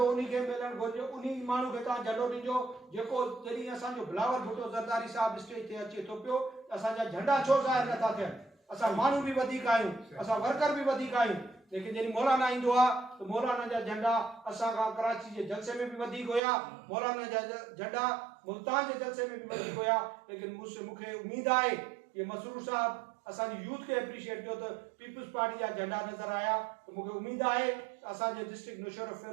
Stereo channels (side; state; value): left; drops out; at 16.4 s